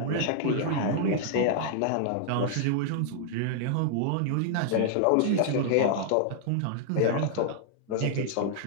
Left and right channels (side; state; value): both; different; correlation -0.01